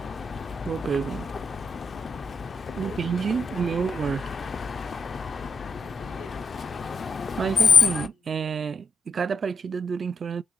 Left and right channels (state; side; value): normal; both; correlation 0.81